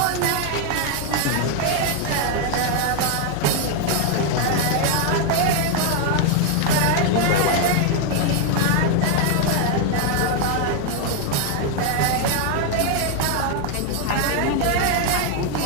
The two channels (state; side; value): different; both; correlation 0.00